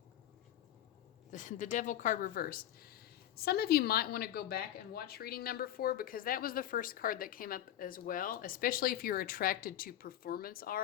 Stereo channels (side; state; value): right; quieter; 11.9 dB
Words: The Devil card reversed. Some of you might want to go back and watch reading number 4 because that was the first card that came up as well, especially if you're attracted to performance